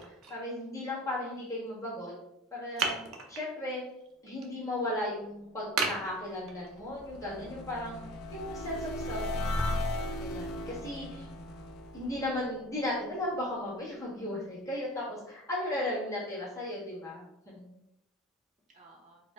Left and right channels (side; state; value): both; normal; correlation 0.38